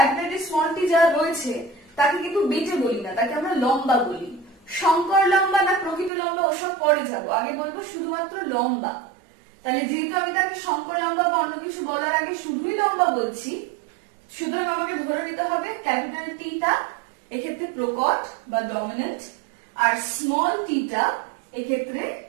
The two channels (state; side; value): drops out; left; at 6.1 s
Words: টি স্মল টি যারা রয়েছে, তাকে কিন্তু বেটে বলি না, তাকে আমরা লম্বা বলি। সংকর লম্বা না প্রকৃত লম্বা ওসব পরে যাবো, আগে বলবো শুধুমাত্র লম্বা। তাহলে যেহেতু আমি তাকে সংকর লম্বা বা অন্য কিছু বলার আগে শুধুই লম্বা বলছি, সুতরাং আমাকে ধরে নিতে হবে ক্যাপিটাল টিটা এক্ষেত্রে প্রকট বা ডমিনেন্ট, আর স্মল টিটা এক্ষেত্রে